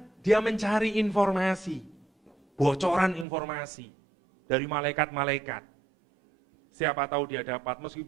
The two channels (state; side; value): drops out; left; at 3.2 s